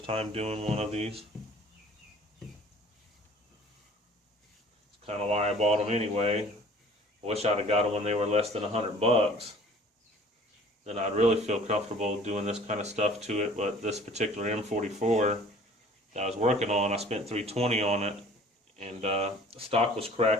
time doing one of these. It's kind of why I bought them anyway. I wish I'd have got them when they were less than $100. Then I'd really feel comfortable doing this kind of stuff to it. But this particular M44 that I was working on, I spent $320 on it. And the stock was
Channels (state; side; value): normal; both; correlation 0.50